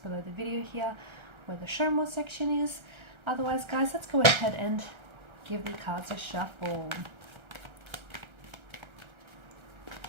below the video here, where the show more section is. Otherwise, guys, let's go ahead and give the cards a shuffle.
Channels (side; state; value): left; late; 1.3 ms